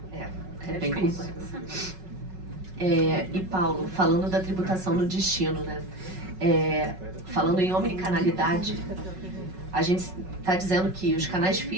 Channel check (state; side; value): late; left; 5.4 ms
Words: É bem difícil. complexo. E Paulo, falando da tributação no destino, né? Falando em omnicanalidade, a gente está dizendo que os canais